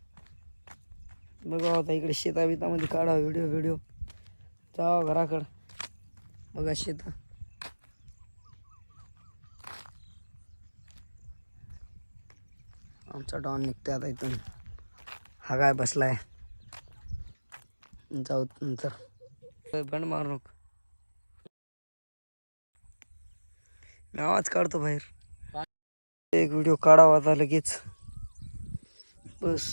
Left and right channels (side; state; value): both; inverted; correlation -1.00